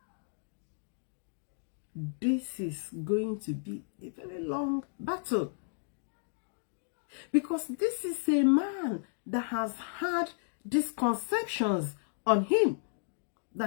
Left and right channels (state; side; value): silent; right; digital silence